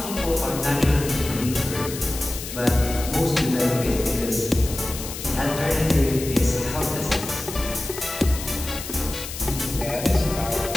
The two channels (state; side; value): noise; left; hiss, 9 dB below the sound